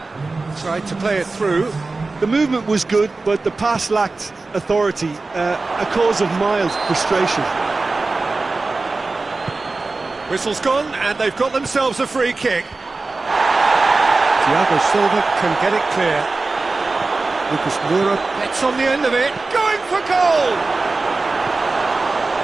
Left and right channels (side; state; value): left; quieter; 3.6 dB